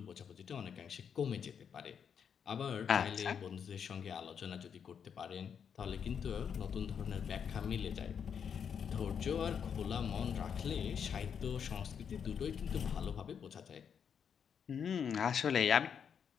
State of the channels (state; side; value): quieter; right; 7.4 dB